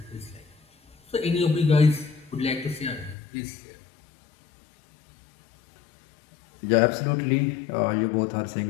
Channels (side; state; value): right; drops out; at 3.2 s